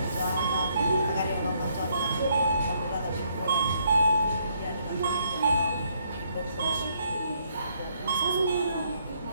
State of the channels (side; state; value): both; inverted; correlation -0.71